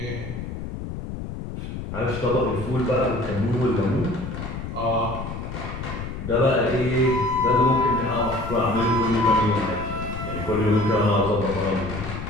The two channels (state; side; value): noise; left; rumble, 7 dB below the sound